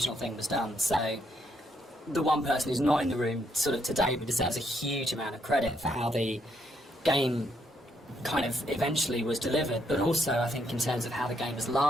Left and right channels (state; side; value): normal; both; correlation 0.75